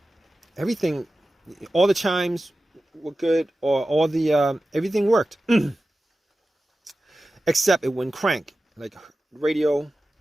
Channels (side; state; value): both; normal; correlation 0.94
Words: all the chimes were good, or all the everything worked, except it wouldn't crank. Like radio,